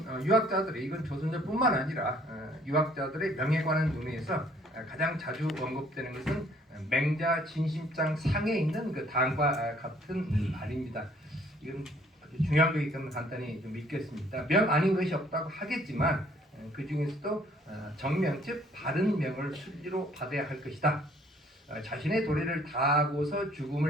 유학자들이, 이건 조선조뿐만 아니라 유학자들의 명에 관한 논의에서 가장 자주 언급되는 것은 맹자 진심장 상에 있는 그 당과 같은 말입니다. 이건 아주 중요한 거기 때문에 간단히 좀 읽겠습니다. 명 아닌 것이 없다고 하겠지만 그 중에서도 정명, 즉 바른 명을 순리로 받아야 할 것이다. 자신의 도리를 다하고서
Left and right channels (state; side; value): normal; both; correlation 0.60